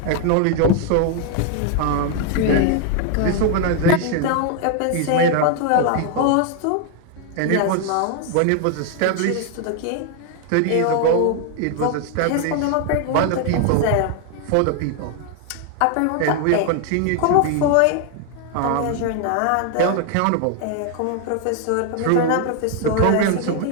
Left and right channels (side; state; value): both; different; correlation 0.01